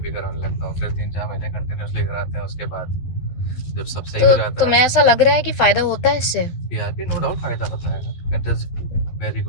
कराने लगता हूँ। फिर 3-4 महीने कंटिन्यूसली कराते हैं। उसके बाद जब सब सही हो तो जाता तुम्हें है ऐसा लग रहा है कि फायदा होता है इससे? पीआरपी नो डाउट फायदा होता है, इट इज वेरी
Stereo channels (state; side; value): late; right; 12 ms